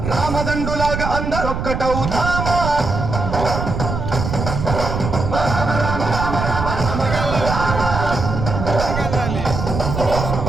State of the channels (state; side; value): noise; right; rumble, 4 dB below the sound